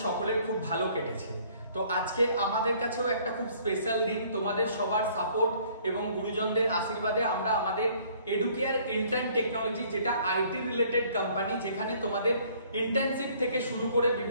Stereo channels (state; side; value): inverted; both; correlation -0.59